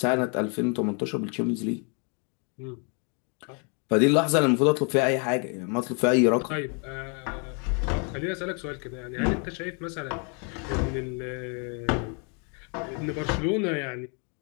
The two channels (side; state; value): right; quieter; 37.4 dB